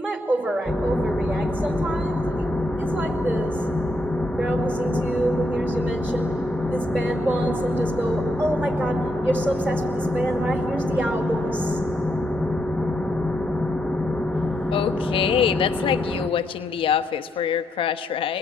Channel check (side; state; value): both; normal; correlation 0.79